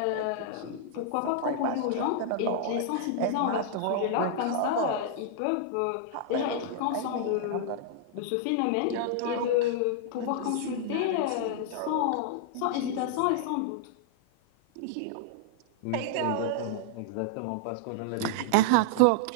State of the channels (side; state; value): both; different; correlation -0.01